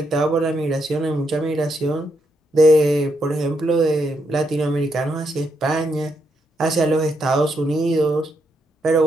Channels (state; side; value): normal; both; correlation 0.79